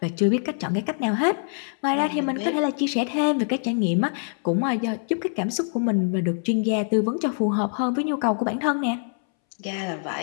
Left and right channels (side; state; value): right; silent; 62 dB below the other